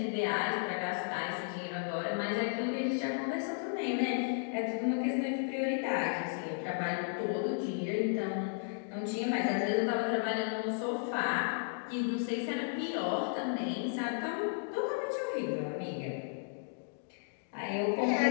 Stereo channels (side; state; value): right; silent; digital silence